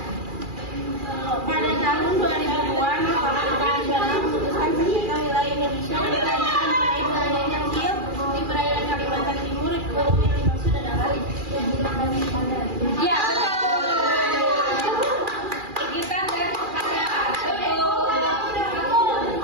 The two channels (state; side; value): late; left; 2.4 ms